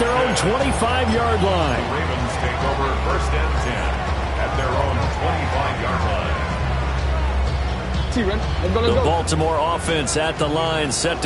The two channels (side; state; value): both; identical; correlation 1.00